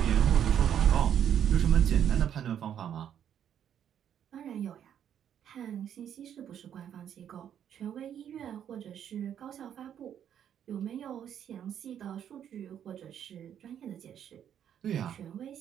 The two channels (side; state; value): left; quieter; 9.4 dB